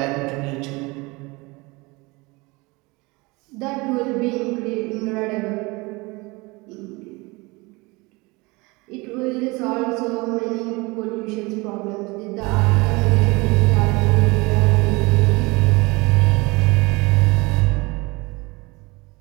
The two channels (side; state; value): left; quieter; 24.9 dB